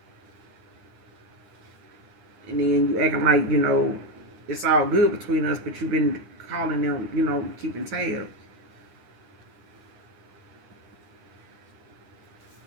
And then you acting like, it's all good between us, but you've been calling them, keeping tabs.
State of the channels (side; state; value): left; late; 9.8 ms